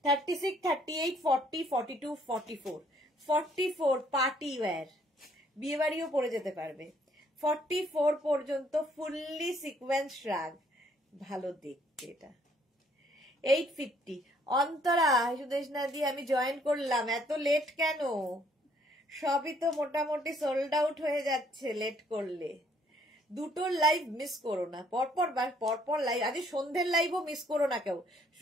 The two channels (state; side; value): normal; both; correlation 0.65